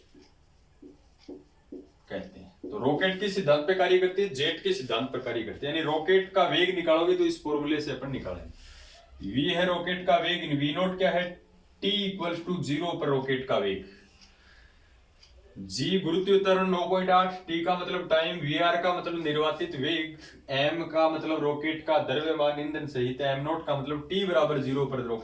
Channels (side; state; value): both; identical; correlation 1.00